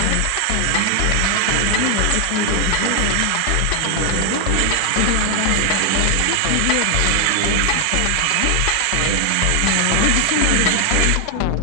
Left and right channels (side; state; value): both; different; correlation 0.00